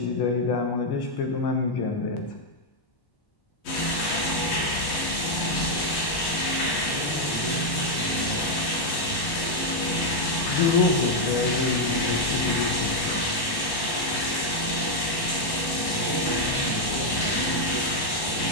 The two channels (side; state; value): right; late; 1.1 ms